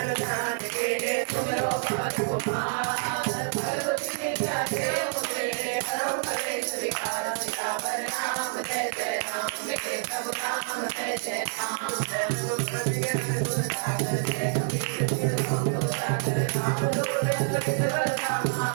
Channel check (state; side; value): silent; left; digital silence